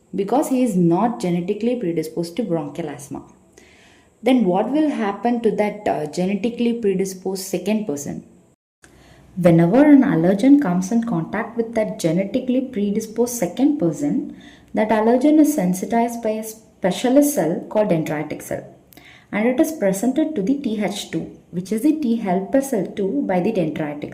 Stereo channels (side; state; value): both; identical; correlation 1.00